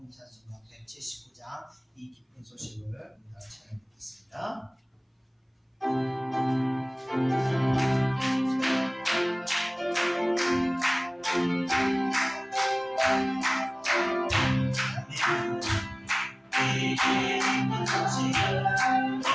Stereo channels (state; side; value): identical; both; correlation 1.00